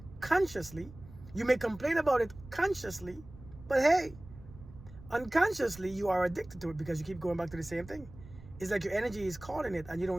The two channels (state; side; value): noise; right; rumble, 18 dB below the sound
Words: consciously, you may complain about it consciously, but hey, unconsciously you are addicted to it because you keep going back to the same thing. It's like your energy is calling it and you